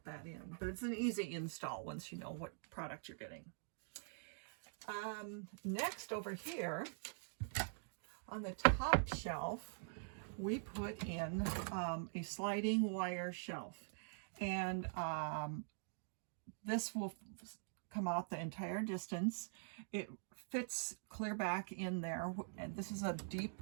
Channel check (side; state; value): left; silent; digital silence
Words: that in. But it's an easy install once you know what product you're getting. Next over here, on the top shelf, we put in a sliding wire shelf. And this will come out the entire distance. It fits clear back in there. And this is a